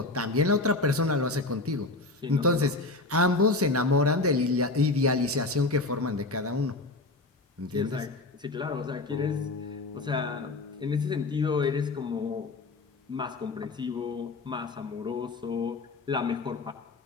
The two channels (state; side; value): quieter; right; 3.2 dB